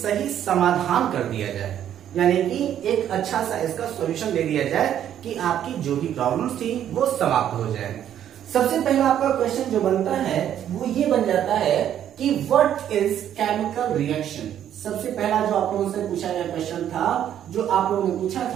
समाधान कर दिया जाए, यानी कि एक अच्छा सा इसका सॉल्यूशन दे दिया जाए कि आपकी जो भी प्रॉब्लम्स थी वो समाप्त हो जाए। सबसे पहला आपका क्वेश्चन जो बनता है वो ये बन जाता है कि व्हाट इज केमिकल रिएक्शन। सबसे पहला जो आप लोगों से पूछा गया क्वेश्चन था, जो आप लोगों ने पूछा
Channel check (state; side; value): quieter; left; 10.4 dB